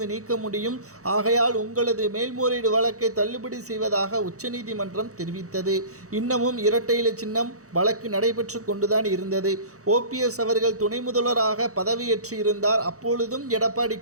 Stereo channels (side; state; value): left; late; 0.65 ms